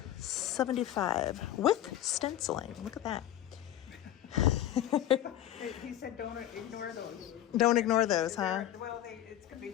$75 with stenciling. Look at that. He said don't ignore those. Don't ignore those, huh? Well, it's going to be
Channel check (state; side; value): quieter; right; 12.3 dB